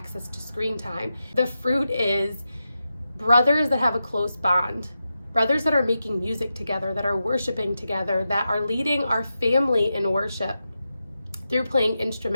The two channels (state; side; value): inverted; both; correlation -0.89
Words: to screen time. The fruit is brothers that have a close bond, brothers that are making music together, that are worshiping together, that are leading our family in worship through playing